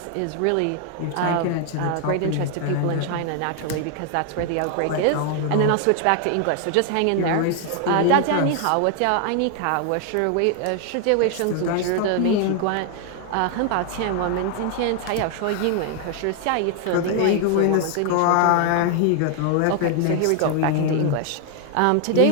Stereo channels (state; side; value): different; both; correlation 0.00